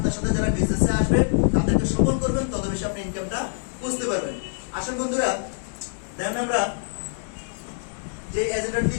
সাথে যারা বিজনেসে আসবে তাদেরকে সফল করবেন, তত বেশি আপনি ইনকামটা বুঝতে পারবেন। আসুন বন্ধুরা, দেন আমরা যে এজেন্ডাটি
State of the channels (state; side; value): silent; right; digital silence